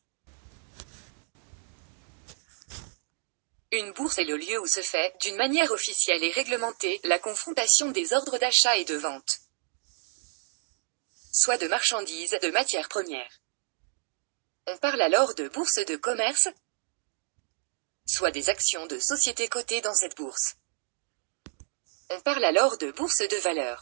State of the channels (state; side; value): silent; left; 59 dB below the other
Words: Une bourse est le lieu où se fait, d'une manière officielle et réglementée, la confrontation des ordres d'achat et de vente, soit de marchandises, de matières premières. On parle alors de bourse de commerce, soit des actions de sociétés cotées dans cette bourse. On parle alors de bourse de